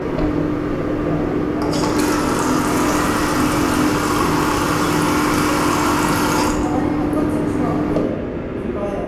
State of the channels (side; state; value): both; identical; correlation 1.00